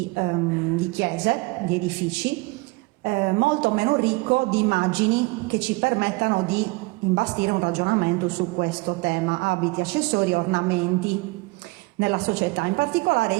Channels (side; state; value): left; quieter; 25.2 dB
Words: chiese, di edifici, molto meno ricco di immagini che ci permettano di imbastire un ragionamento su questo tema, abiti, accessori e ornamenti nella società. In particolare